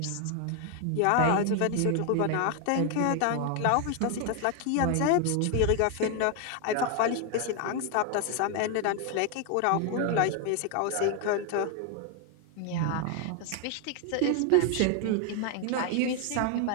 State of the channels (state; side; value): different; both; correlation 0.01